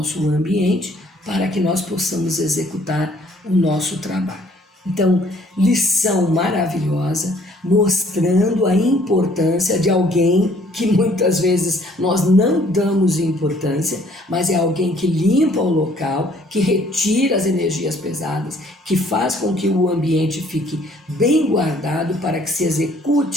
ambiente para que nós possamos executar o nosso trabalho. Então, lição maravilhosa, mostrando a importância de alguém que muitas vezes nós não damos importância, mas é alguém que limpa o local, que retira as energias pesadas, que faz com que o ambiente fique bem guardado para que se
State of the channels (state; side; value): normal; both; correlation 0.60